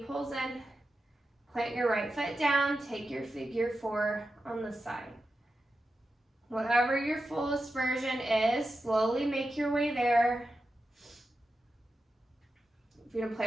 pulls in. Plant your right foot down. Take your figure 4 on the side. Whatever your fullest version is, slowly make your way there. If you're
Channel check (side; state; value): both; normal; correlation 0.90